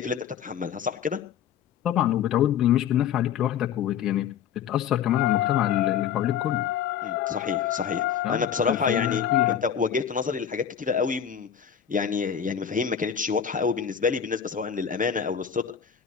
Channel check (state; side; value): quieter; right; 8.4 dB